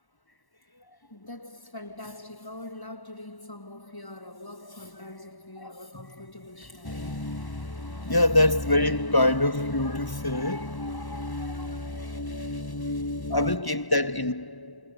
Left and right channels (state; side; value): late; right; 1.1 ms